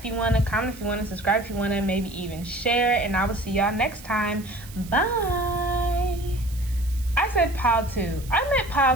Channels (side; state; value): right; noise; hiss, 19 dB below the sound